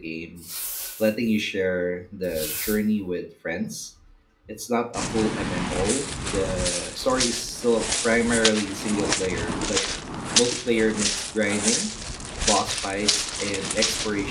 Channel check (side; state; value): both; identical; correlation 1.00